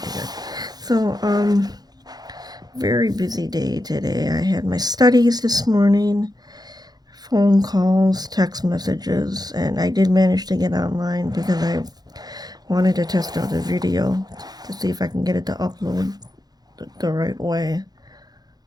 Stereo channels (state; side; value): late; left; 0.19 ms